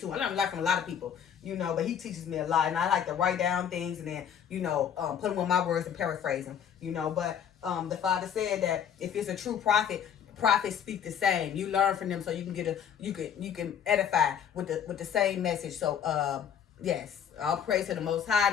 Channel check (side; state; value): right; quieter; 8.5 dB